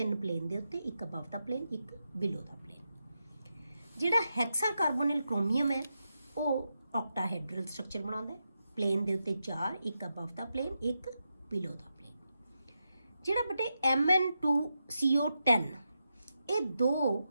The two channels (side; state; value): both; inverted; correlation -0.87